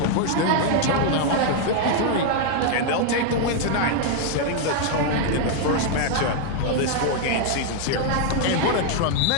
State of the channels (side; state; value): both; different; correlation 0.00